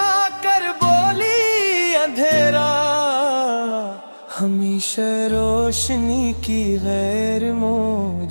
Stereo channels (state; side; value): inverted; both; correlation -1.00